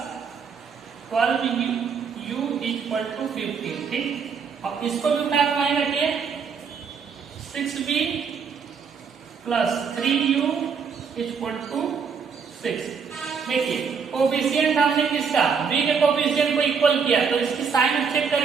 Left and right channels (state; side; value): quieter; left; 6.1 dB